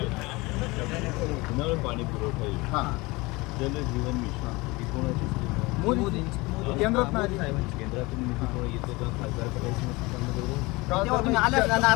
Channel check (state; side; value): quieter; right; 23.3 dB